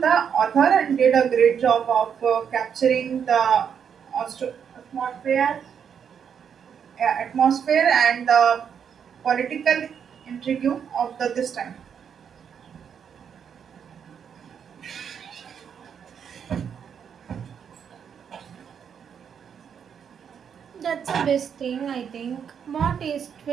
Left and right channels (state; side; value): quieter; left; 7.6 dB